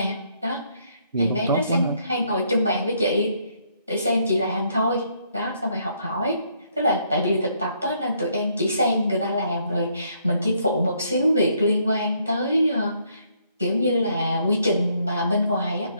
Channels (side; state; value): both; inverted; correlation -0.70